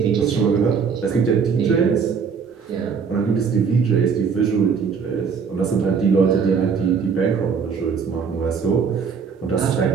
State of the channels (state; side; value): quieter; left; 6.1 dB